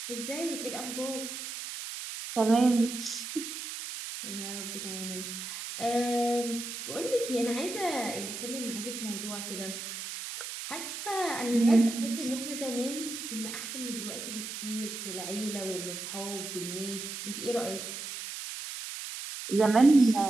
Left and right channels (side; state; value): right; noise; hiss, 7 dB below the sound